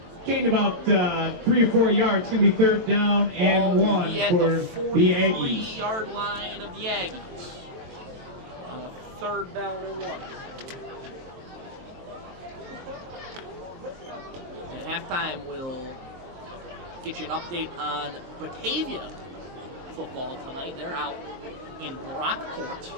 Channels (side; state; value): left; late; 23 ms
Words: Gained about 3 or 4 yards. It's going to be third down and 1 for the Aggies. 43-yard line of the Aggies. Third down and 1. At halftime, we'll get you an update on Batavia football tonight. They're out in Brockport.